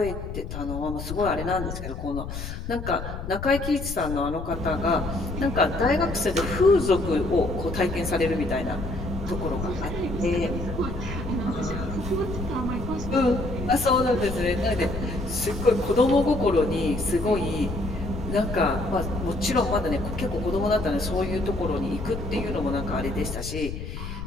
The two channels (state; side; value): noise; left; rumble, 7 dB below the sound